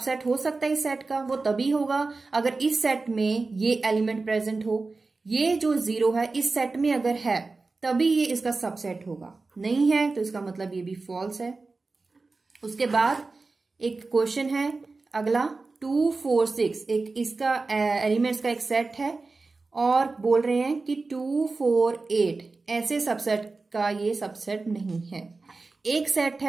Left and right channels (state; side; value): quieter; left; 3.8 dB